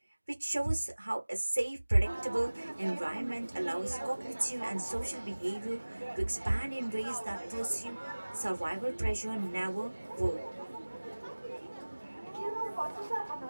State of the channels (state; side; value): inverted; both; correlation -1.00